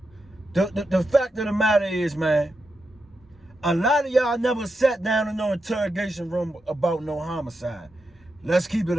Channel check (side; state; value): both; normal; correlation 0.87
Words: The fact of the matter is, man, a lot of y'all never sat down in no interrogation room about no homicide. Let's keep it